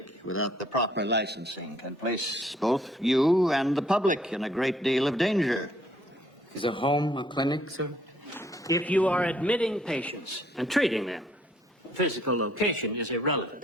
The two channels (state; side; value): normal; both; correlation 0.64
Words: without the proper licensing can place both you and the public in a great deal of danger? Is a home a clinic, sir? If you are admitting patients and treating them, physical location is